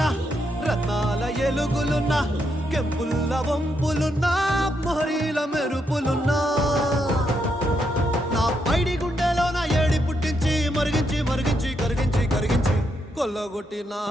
రత్నాల ఎలుగులున్నా కెంపుల్ల వంపులున్నా మొహరీల మెరుపులున్నా నా పైడి గుండెలో నా ఏడి పుట్టించి మరిగించి మరిగించి కరిగించి కరిగించి కొల్లగొట్టి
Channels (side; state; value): both; normal; correlation 0.79